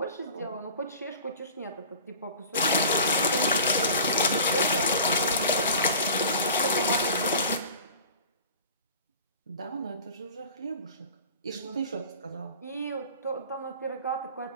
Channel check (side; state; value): both; inverted; correlation -0.41